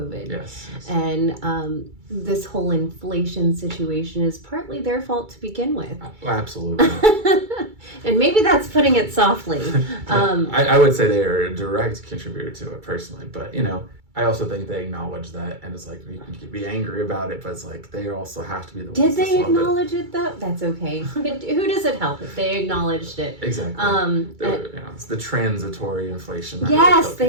Yes. And this whole inflation situation is partly their fault to begin with. Absolutely. And maybe that's putting it softly. I would say they are a direct contributor to it personally, but I also think they acknowledge that, and it's like, you can be angry about it, but it's like they also have to be the ones. Did they acknowledge it though? That's okay. Who does it help if they acknowledged it? Exactly. It's the transitory inflation. Yes,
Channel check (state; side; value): late; left; 2.3 ms